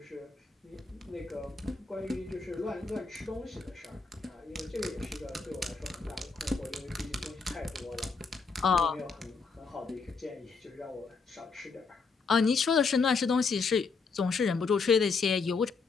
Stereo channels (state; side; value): quieter; right; 4.7 dB